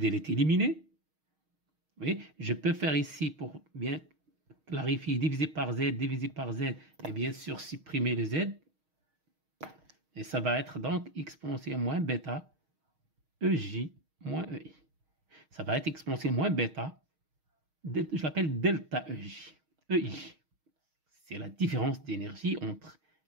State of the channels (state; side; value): late; left; 6.4 ms